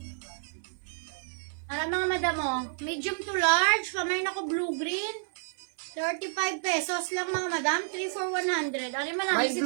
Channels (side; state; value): left; silent; 58 dB below the other